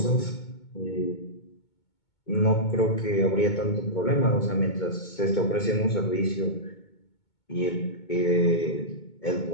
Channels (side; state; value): right; late; 2.2 ms